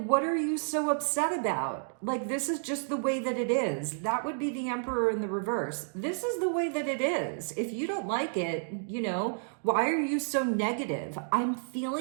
what are you so upset about? Like, this is just the way that it is. That would be the Emperor in the reverse. This is the way that it is. If you don't like it, why are you so negative? I'm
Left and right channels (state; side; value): silent; left; digital silence